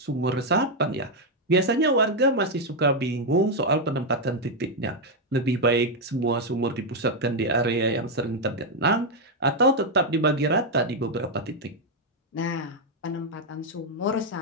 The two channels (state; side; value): normal; both; correlation 0.02